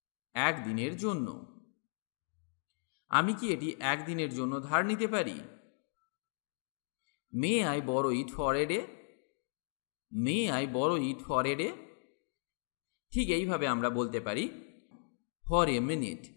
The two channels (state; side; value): silent; right; digital silence